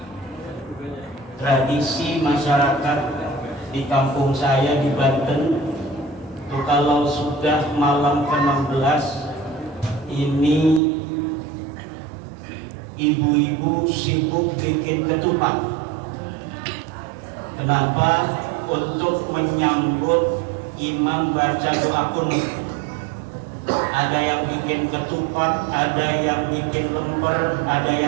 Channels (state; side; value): drops out; left; at 10.8 s